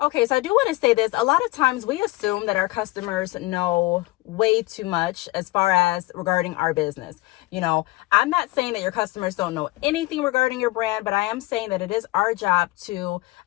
Okay, so I do want to say this. A lot of times we assume that our customers know way too much as far as regarding our business. You know, I'm not saying that your customers don't know anything regarding your brand, but I am saying that it is our job to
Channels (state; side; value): quieter; right; 20.9 dB